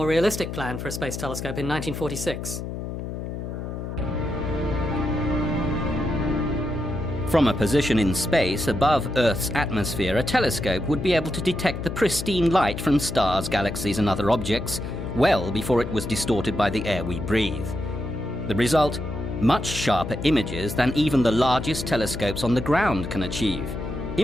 realistic plan for a space telescope in 1946. From a position in space above Earth's atmosphere, a telescope would be able to detect the pristine light from stars, galaxies and other objects well before it was distorted by the air we breathe. The result? Much sharper images than even the largest telescopes on the ground can achieve.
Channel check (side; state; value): left; noise; hum, 6 dB below the sound